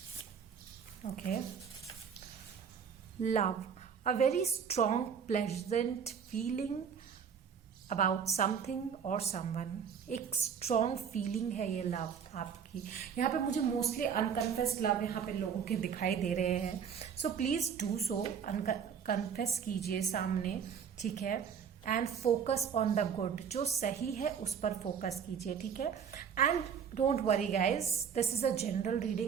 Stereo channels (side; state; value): left; quieter; 7.3 dB